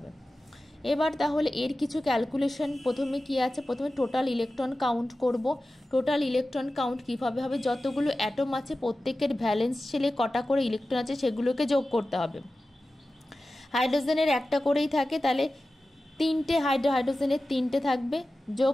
এবার তাহলে এর কিছু ক্যালকুলেশন প্রথমে কি আছে, প্রথমে টোটাল ইলেকট্রন কাউন্ট করব। টোটাল ইলেকট্রন কাউন্ট কীভাবে হবে, যতগুলো অ্যাটম আছে প্রত্যেকের ভ্যালেন্স শেলে কটা করে ইলেকট্রন আছে সেগুলোকে যোগ করতে হবে। হাইড্রোজেনের একটা করেই থাকে, তাহলে 3টে হাইড্রোজেনের 3টে থাকবে,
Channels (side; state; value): both; normal; correlation 0.95